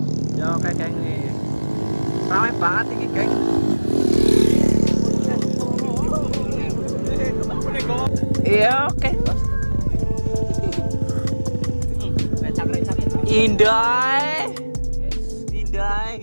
Ya oke, geng. Ramai banget ini, geng. Iya, oke. Indah. Indah,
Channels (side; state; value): both; inverted; correlation -1.00